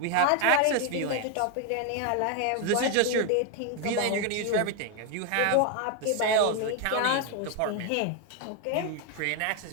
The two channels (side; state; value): both; different; correlation 0.01